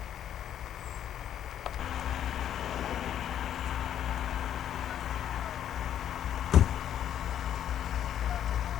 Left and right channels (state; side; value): quieter; right; 10.3 dB